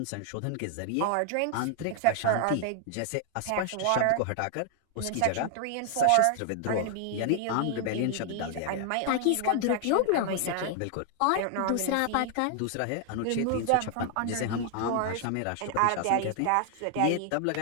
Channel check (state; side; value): different; both; correlation 0.00